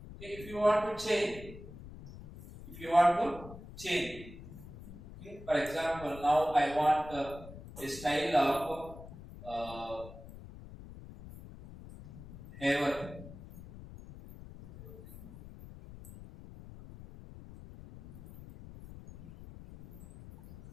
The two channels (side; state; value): left; noise; rumble, 15 dB below the sound